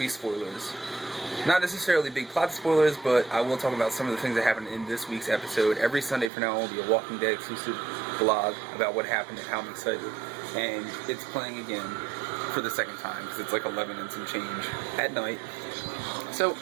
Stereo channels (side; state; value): left; drops out; at 6.3 s